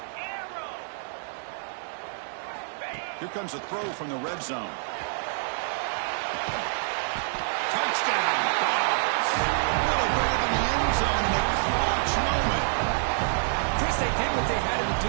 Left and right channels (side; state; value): left; silent; digital silence